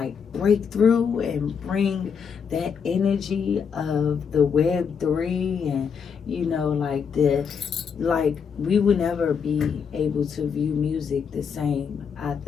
break through and bring that energy of the Web3 and we would never be able to view music the same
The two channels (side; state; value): right; quieter; 6.6 dB